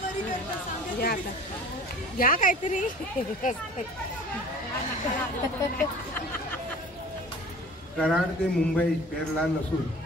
या आता या काहीतरी. कराड ते मुंबई पेरला नसून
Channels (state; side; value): normal; both; correlation 0.44